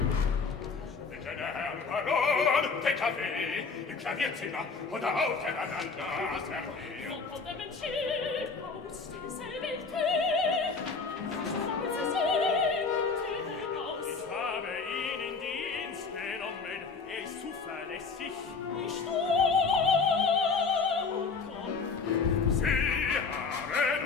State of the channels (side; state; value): right; quieter; 4.7 dB